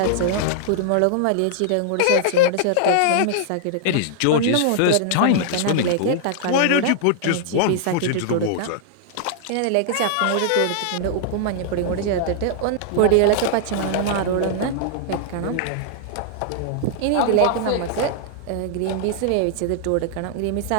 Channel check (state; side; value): different; both; correlation -0.01